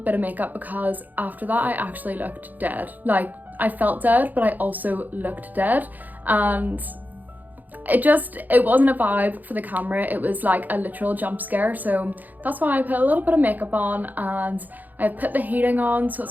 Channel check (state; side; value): late; left; 0.083 ms